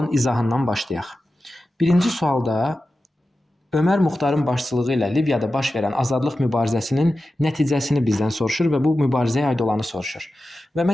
izahından başlayaq. Birinci sualda Ömər Muxtarın başçılığı ilə Liviyada baş verən azadlıq mübarizəsinin nəticəsini bizdən soruşur və bu mübarizəyə aid olanı soruşur. Və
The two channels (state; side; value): normal; both; correlation 0.93